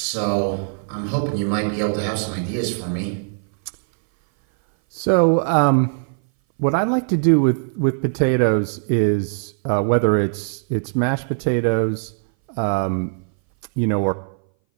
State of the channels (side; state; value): left; silent; 60 dB below the other